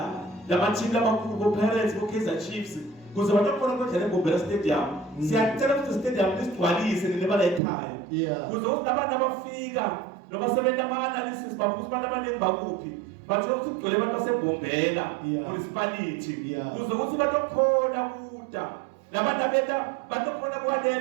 lamathimu lamakhulu boPirates boKaizer Chiefs kuze batokona kodlela eBombela Stadium. Siyacela ukuthi stadium lisigcwalise nebala ekhaya kuze ukuthi abantu abafika noma sebenza ama-analysis babuza abantu abaningi bakuphi bathola ukuthi kugcwele abantu baseBombela municipality kuze ukuthi batokhona kuda labantu abeta batokhona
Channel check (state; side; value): drops out; left; at 7.6 s